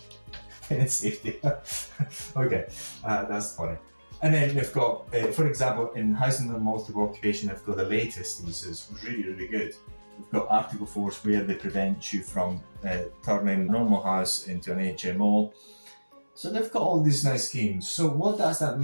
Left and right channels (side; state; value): both; inverted; correlation -1.00